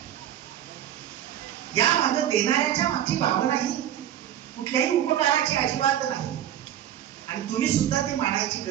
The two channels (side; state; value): left; quieter; 11.1 dB